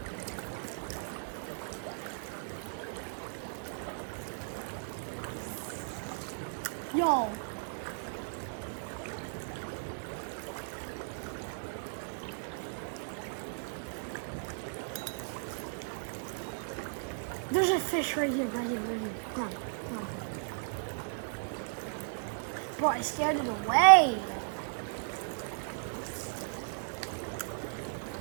Yo. There's a fish right here, right here, right here. Come on, come on. Bro, I scared it away.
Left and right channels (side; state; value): left; silent; digital silence